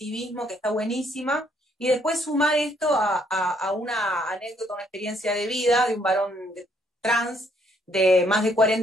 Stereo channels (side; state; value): both; normal; correlation 0.68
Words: que está buenísima, y después sumar esto a una anécdota, una experiencia de vida de un varón trans de más de